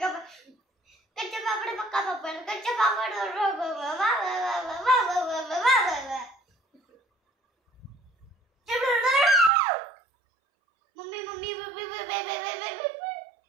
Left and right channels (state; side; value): drops out; left; at 9.5 s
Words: कच्चा पापड पक्का पापड कच्चा पापड. मम्मी मम्मी